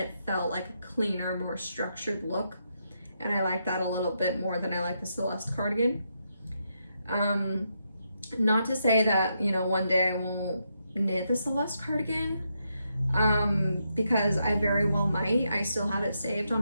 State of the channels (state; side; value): inverted; both; correlation -0.81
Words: felt like a cleaner, more structured look. And I like that a little bit more than I like the Celeste cardigan. Not to say that, you know, one day I won't knit the Celeste cardigan, because I very well might. I still have it saved on